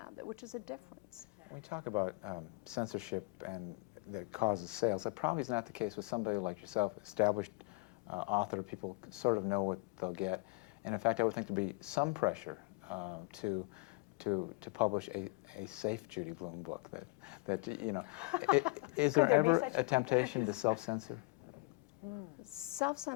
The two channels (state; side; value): quieter; right; 26.9 dB